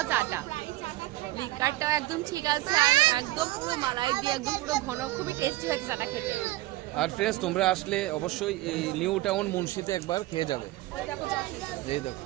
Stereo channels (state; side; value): quieter; left; 17.8 dB